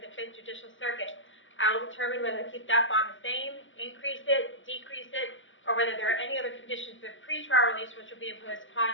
5th Judicial Circuit. I will determine whether to keep that bond the same, increase it, decrease it, or whether there are any other conditions of pretrial release which will be imposed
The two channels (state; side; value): late; right; 0.56 ms